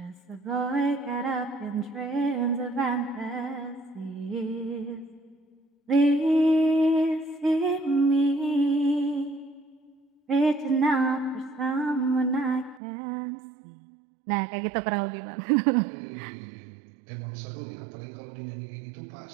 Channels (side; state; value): left; drops out; at 12.8 s